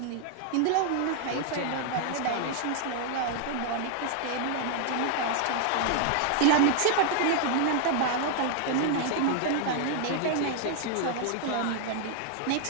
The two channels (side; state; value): both; different; correlation 0.00